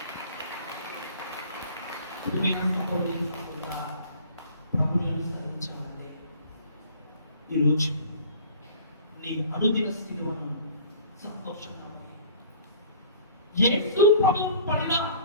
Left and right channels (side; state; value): both; inverted; correlation -0.48